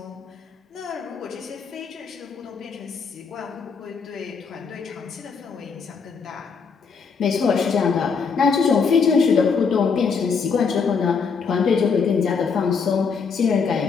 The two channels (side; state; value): right; quieter; 5.6 dB